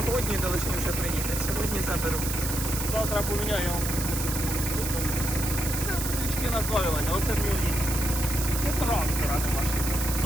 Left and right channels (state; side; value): noise; right; hiss, 4 dB below the sound